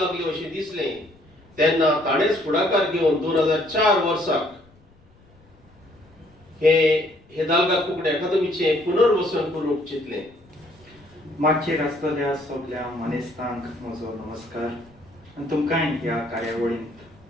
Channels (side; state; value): left; noise; rumble, 29 dB below the sound